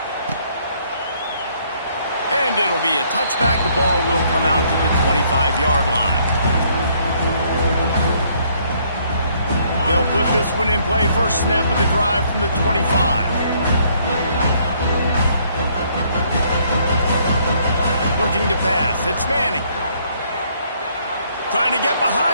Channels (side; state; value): both; inverted; correlation -0.66